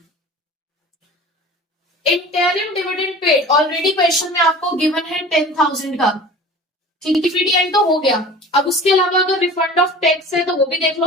Interim dividend paid, already question में आपको गिवन है 10,000 का। ठीक है, पीडीएन तो हो गया। अब उसके अलावा अगर रिफंड ऑफ टैक्स है तो वो भी देख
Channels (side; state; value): both; normal; correlation 0.40